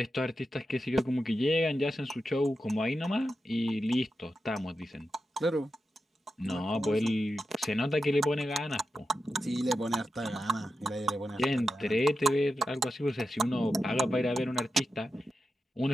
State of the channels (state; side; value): normal; both; correlation 0.89